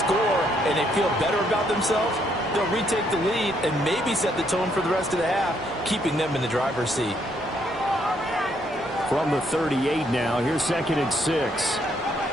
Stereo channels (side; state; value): both; normal; correlation 0.72